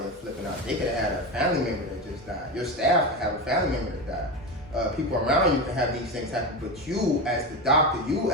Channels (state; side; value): normal; both; correlation 0.20